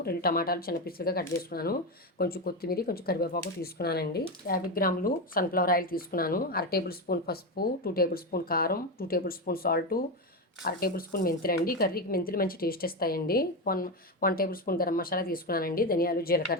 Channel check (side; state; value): both; normal; correlation 0.13